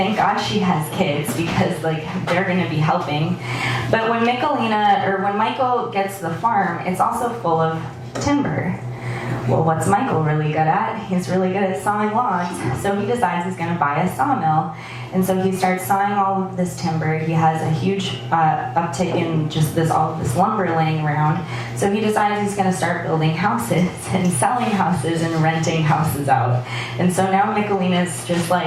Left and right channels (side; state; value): both; identical; correlation 1.00